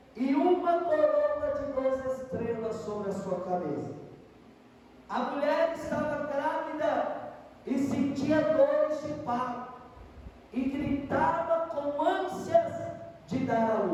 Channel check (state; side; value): identical; both; correlation 1.00